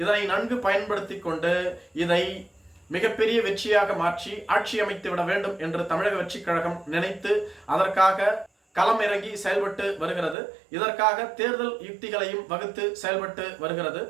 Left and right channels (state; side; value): drops out; left; at 10.4 s